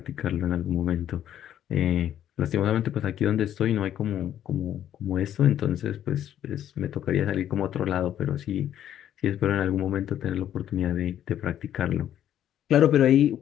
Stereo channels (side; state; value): right; quieter; 10.9 dB